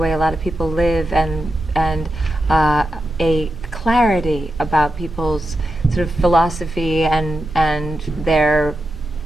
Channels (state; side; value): normal; both; correlation 0.88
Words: a lot of people live, and a clarity about people's sort of philosophy and their